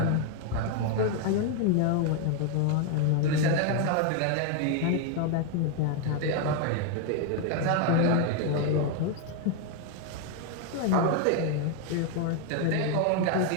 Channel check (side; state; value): both; different; correlation 0.01